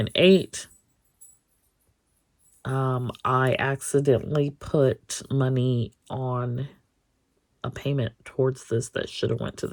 I accidentally put money on a payment towards this that should have went to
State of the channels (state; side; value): identical; both; correlation 1.00